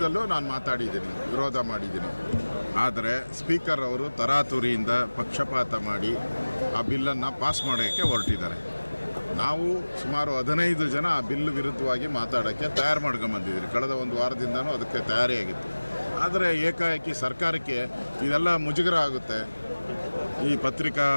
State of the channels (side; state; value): both; inverted; correlation -1.00